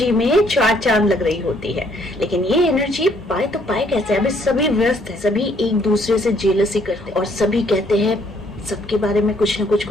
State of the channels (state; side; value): normal; both; correlation 0.66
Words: में चार चांद लग रही होती है। लेकिन ये एनर्जी पाए तो पाए कैसे? अभी सभी व्यस्त है, सभी एक दूसरे से जेलसी करते हैं और सभी कहते हैं सबके बारे में कुछ ना